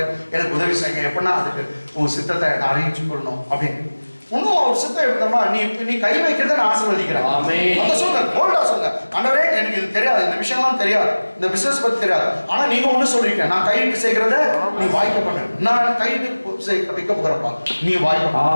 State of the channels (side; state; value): both; inverted; correlation -1.00